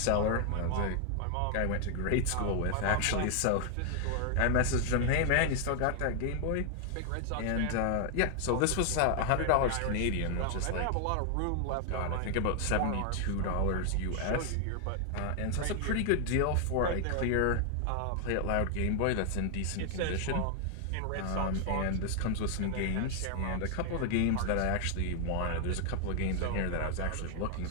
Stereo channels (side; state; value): both; different; correlation 0.00